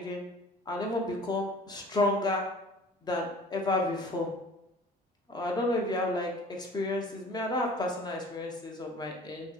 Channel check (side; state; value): both; normal; correlation 0.47